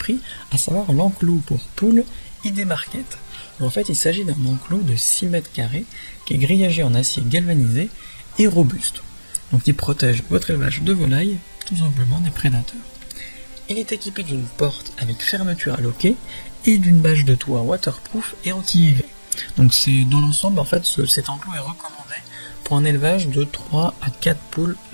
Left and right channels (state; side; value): inverted; both; correlation -1.00